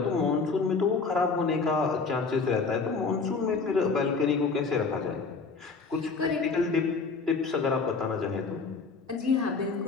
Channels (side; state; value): right; quieter; 4.6 dB